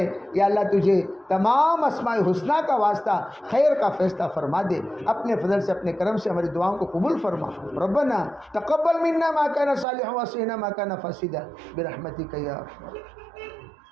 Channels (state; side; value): drops out; left; at 9.9 s